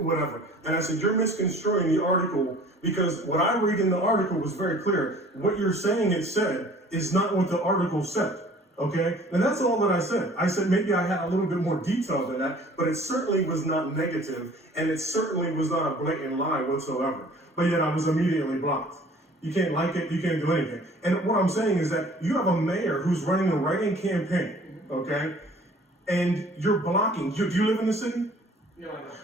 whatever. And I said, you're misconstruing the article because what I read in the article was very clear. What you're saying it said is not what the article said. Okay, and that's all that I said. I said maybe I had a little bit more detail than that, but it certainly was not negative, and it certainly was not a blatant lie whatsoever. But yet I was immediately blocked. You can't like it, you can't do anything. And what I'm saying is that you have a mayor who's running a write-in campaign, okay, and you're blocking. Do you live in the city? No, I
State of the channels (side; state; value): both; normal; correlation 0.51